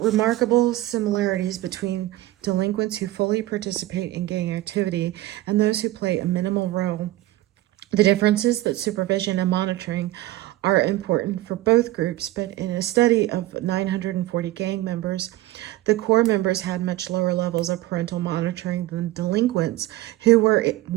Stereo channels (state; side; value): quieter; left; 16.5 dB